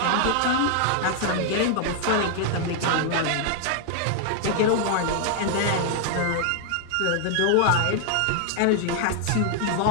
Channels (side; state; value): both; different; correlation 0.00